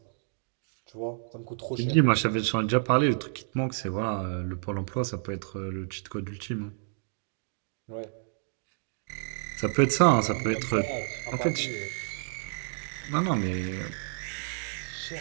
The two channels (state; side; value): silent; left; 58 dB below the other